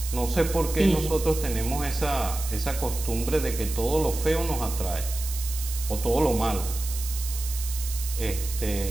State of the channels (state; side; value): noise; right; hiss, 9 dB below the sound